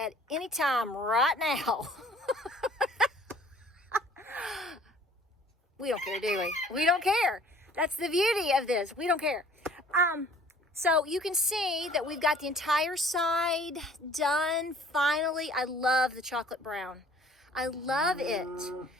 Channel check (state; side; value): normal; both; correlation 0.53